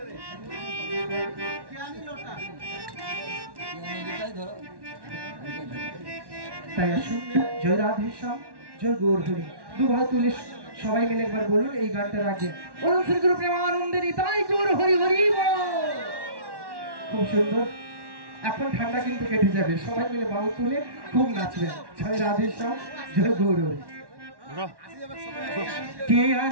তাই আসুন জয় রাধে শ্যাম জয় গৌর হরি দু ভাই তুলে সবাই মিলে একবার বলুন এই গানটার আগে বলুন শ্রী গুরু প্রেমানন্দেরই তাই গৌর হরি হরি খুব সুন্দর এখন ঠান্ডা কিন্তু কেটে যাবে সবাই মিলে বাহু তুলে খুব নাচবেন জয় রাধে শ্যাম জয় গৌর হরি কে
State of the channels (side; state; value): left; late; 1.1 ms